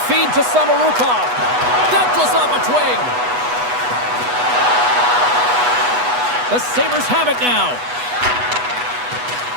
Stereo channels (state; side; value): late; left; 8.1 ms